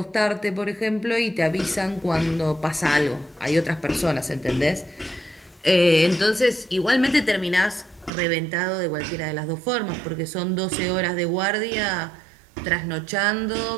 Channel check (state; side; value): drops out; left; at 8.1 s